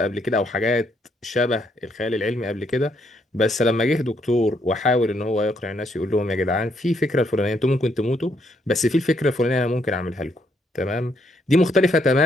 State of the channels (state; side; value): normal; both; correlation 0.73